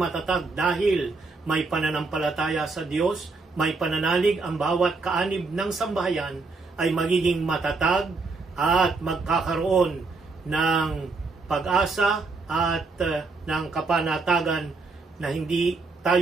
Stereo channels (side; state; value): left; quieter; 3.9 dB